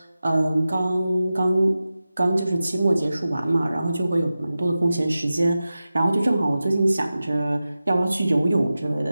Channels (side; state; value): both; inverted; correlation -0.94